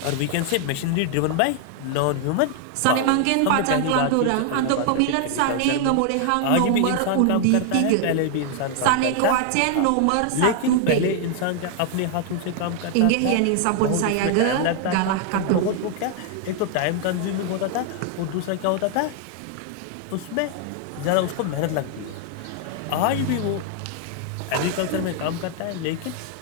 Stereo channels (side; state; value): both; different; correlation 0.00